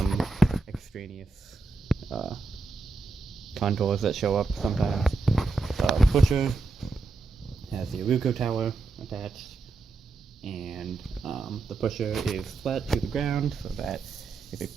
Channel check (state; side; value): quieter; left; 3.7 dB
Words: extraneous contours that show up sometimes. The pusher has the Aruco tower attached, and the pusher is flat to the ground so that if a